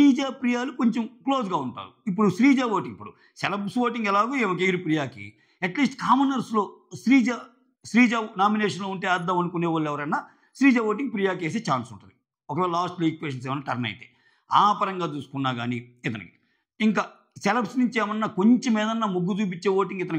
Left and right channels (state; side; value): identical; both; correlation 1.00